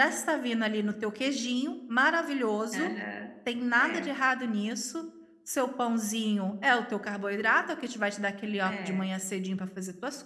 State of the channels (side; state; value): both; identical; correlation 1.00